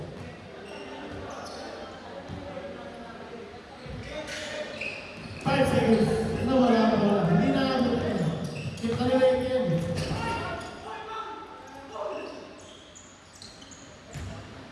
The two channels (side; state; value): both; identical; correlation 1.00